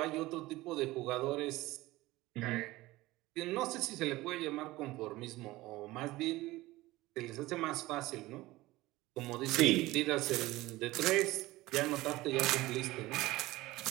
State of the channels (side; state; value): left; quieter; 18.7 dB